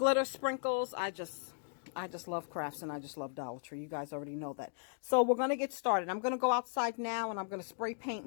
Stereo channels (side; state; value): right; silent; digital silence